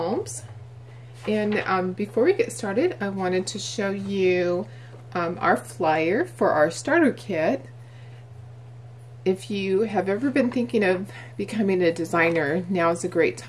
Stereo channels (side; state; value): both; identical; correlation 1.00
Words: And before we get started, I wanted to show you our flyer for our starter kit. If you have ever been thinking of becoming a designer, now is a great